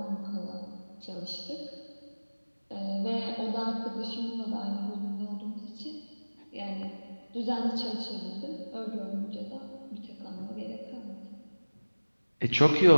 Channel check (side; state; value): both; inverted; correlation -1.00